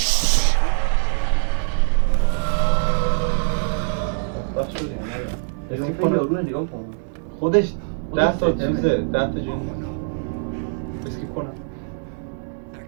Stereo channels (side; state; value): left; silent; 62 dB below the other